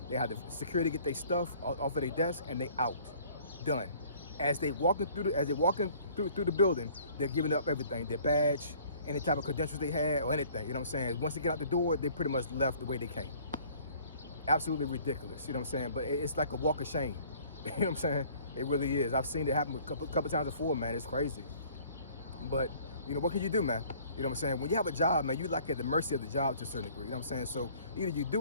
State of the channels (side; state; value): both; inverted; correlation -0.54